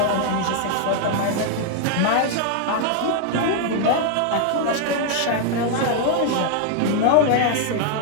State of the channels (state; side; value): different; both; correlation 0.00